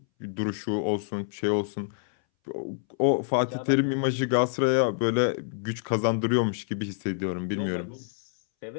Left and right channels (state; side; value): silent; right; 60 dB below the other